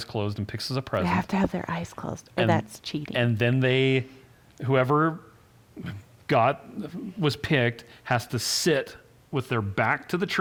closed and picks us a They present. have to have their eyes closed, or And- that's cheating. And then whoever was picked has to sit with their back to the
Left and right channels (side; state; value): both; identical; correlation 1.00